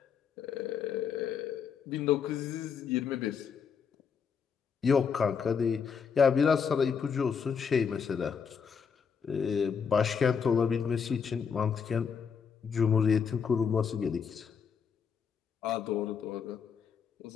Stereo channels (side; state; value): right; quieter; 6.5 dB